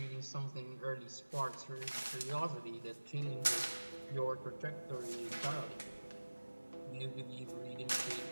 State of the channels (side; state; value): both; inverted; correlation -1.00